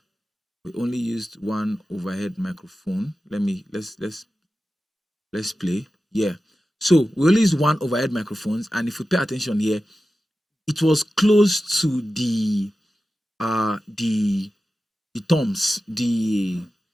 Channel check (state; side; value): normal; both; correlation 0.94